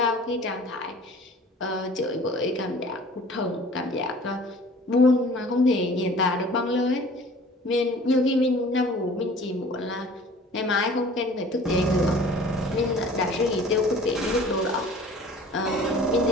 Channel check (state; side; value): normal; both; correlation 0.47